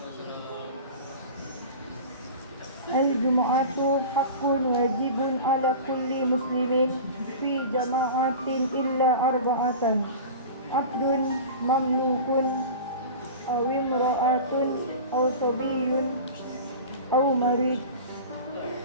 Al-Jumu'atu haqqun wajibun ala kulli muslimin fi jama'atin illa arba'atan, abdun mamlukun aw imra'atun aw sabiyyun aw marid.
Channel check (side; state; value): both; inverted; correlation -0.34